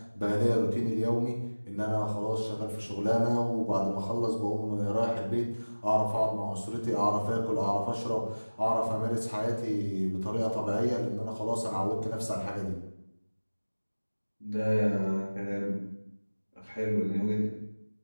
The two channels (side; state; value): both; inverted; correlation -1.00